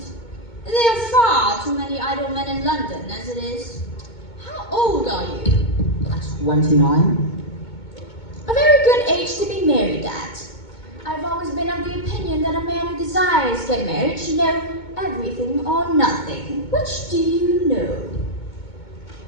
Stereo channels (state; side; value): late; right; 2.2 ms